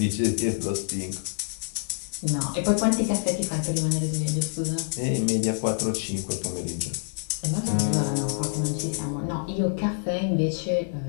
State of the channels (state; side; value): silent; right; digital silence